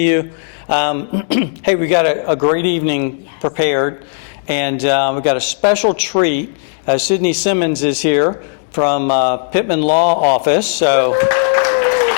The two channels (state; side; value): silent; right; digital silence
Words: you. Hey, we got a great evening prepared, and we got a special treat. Sydney Simmons is here from Pittman Law Office, so